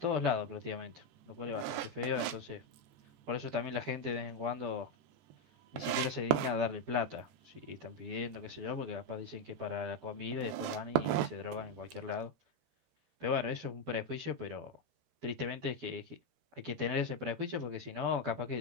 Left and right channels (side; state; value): left; late; 14 ms